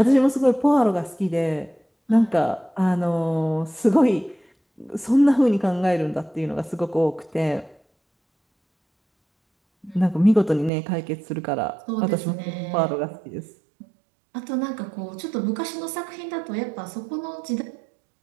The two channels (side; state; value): left; drops out; at 10.7 s